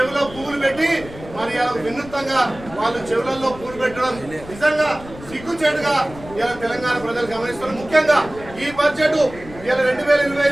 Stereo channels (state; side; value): noise; left; rumble, 17 dB below the sound